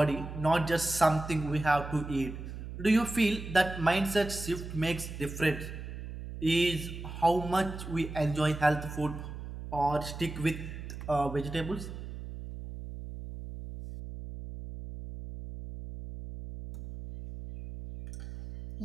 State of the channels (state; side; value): noise; right; hum, 9 dB below the sound